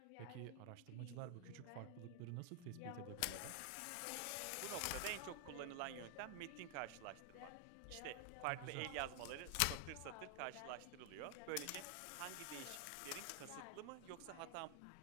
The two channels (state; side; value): different; both; correlation 0.00